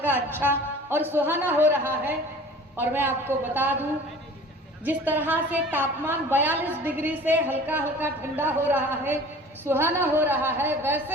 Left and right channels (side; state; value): both; normal; correlation 0.44